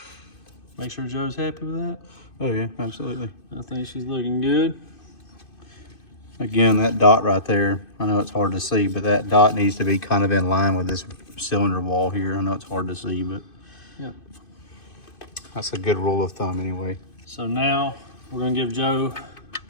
Make sure Joe's happy with that. Oh yeah, absolutely. I think she's looking good. Again, that dot right there, I know it's hard to see, but that dot needs to be kind of in line with this cylinder wall here. I know it's hard to see, but Yeah. that's a good rule of thumb anyway. So now we're gonna give Joe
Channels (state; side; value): late; right; 2.5 ms